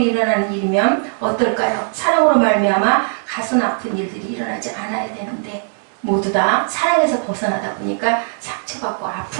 일어나는 일이면 어떨까요? 사랑으로 말미암아 가슴 아픈 일들이 일어나지 않아야 되는데 모두 다 사랑에서 벗어나다 보니까 상처받고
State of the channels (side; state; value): left; silent; 59 dB below the other